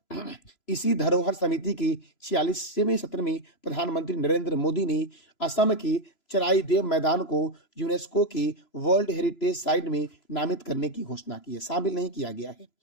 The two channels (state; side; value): late; right; 3.0 ms